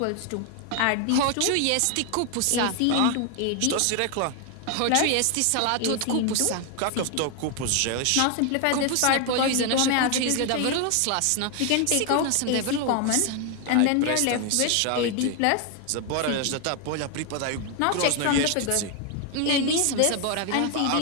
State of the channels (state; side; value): different; both; correlation 0.01